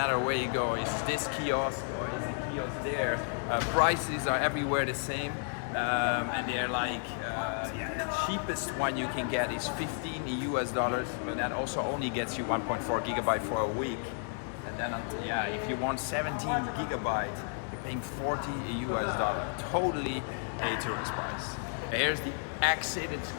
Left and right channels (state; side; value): silent; right; 56 dB below the other